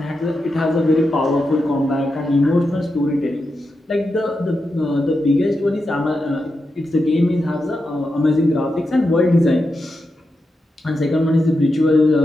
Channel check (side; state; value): both; normal; correlation 0.88